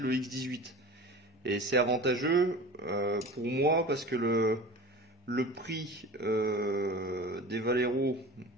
X18. Et c'est avantageux pour moi parce que le prix des Valero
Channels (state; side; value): normal; both; correlation 0.36